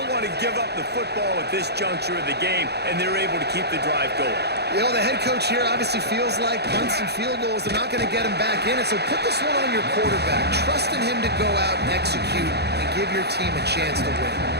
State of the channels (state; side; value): late; left; 0.48 ms